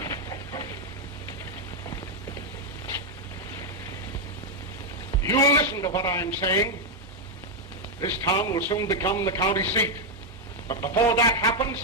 You will listen to what I'm saying. This town will soon become the county seat. But before that happens,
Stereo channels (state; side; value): normal; both; correlation 0.00